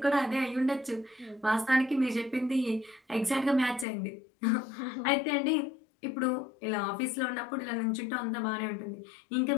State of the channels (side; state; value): right; drops out; at 3.9 s